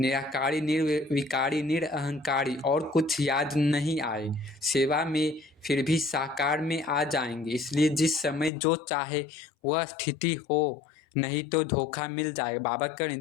निर्विकारी, निरअहंकारी और कुछ याद नहीं आए। सेवा में फिर भी साकार में आ जाएंगे। इसलिए जिस समय जो चाहे वह स्थिति हो, नहीं तो धोखा मिल जाएगा। बाबा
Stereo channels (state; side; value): drops out; right; at 8.5 s